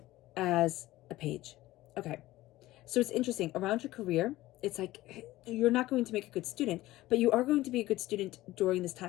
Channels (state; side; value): quieter; right; 17.0 dB